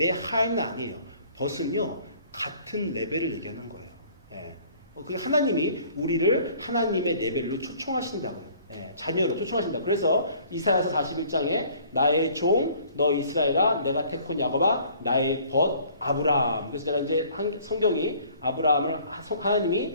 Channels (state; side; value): inverted; both; correlation -0.55